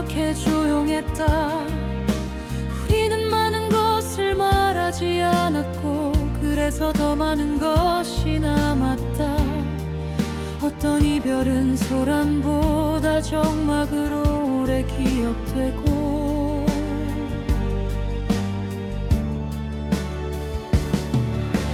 조용했다. 우리는 많은 것을 말하지 않았고 그래서 더 많은 것이 남았다. 어떤 이별은 소란보다 적막으로 오래 기억되고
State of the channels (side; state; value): both; identical; correlation 1.00